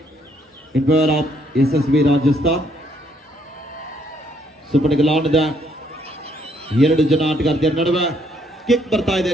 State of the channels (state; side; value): normal; both; correlation 0.69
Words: in favour of SSB Rajasthan. Super ಗೆಲುವಾಣದ 2 ಜನ ಆಟಗಾರ್ತಿಯರ ನಡುವೆ ಕಿಕ್ ಬರ್ತಾ ಇದೆ.